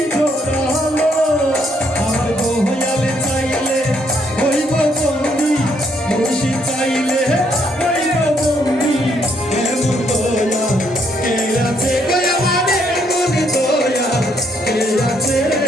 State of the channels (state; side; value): normal; both; correlation 0.71